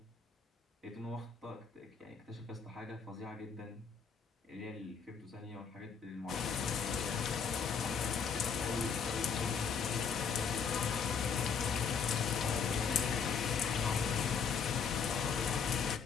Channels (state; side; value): quieter; right; 6.2 dB